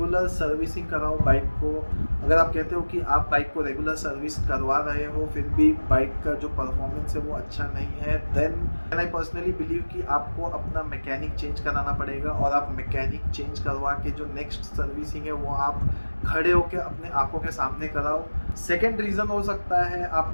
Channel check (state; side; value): inverted; both; correlation -1.00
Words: सर्विसिंग कराओ बाइक को। अगर आप कहते हो कि आप बाइक को रेगुलर सर्विस करवा रहे हो फिर भी बाइक का जो परफॉर्मेंस है वो अच्छा नहीं है, देन आई पर्सनली बिलीव कि आपको अपना मैकेनिक चेंज कराना पड़ेगा, और आप मैकेनिक चेंज करवा के जो नेक्स्ट सर्विसिंग है वो आप खड़े होकर अपने आंखों के सामने कराओ। सेकेंड रीज़न हो सकता है